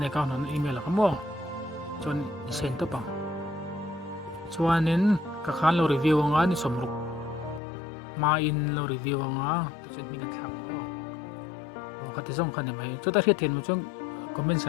account on email ka mo chon send to pa chuanin ka khan lo review nga ni somruk ma in lo review nga ti chen mi kan thak mo o ka ti song khan mai chu ta hiat then mo chung comment sa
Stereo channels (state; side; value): drops out; right; at 7.6 s